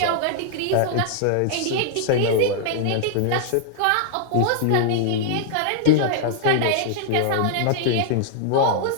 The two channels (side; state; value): both; different; correlation -0.01